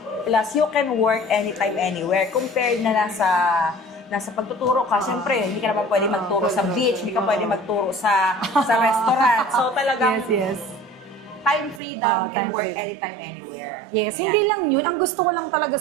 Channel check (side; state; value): left; drops out; at 11.8 s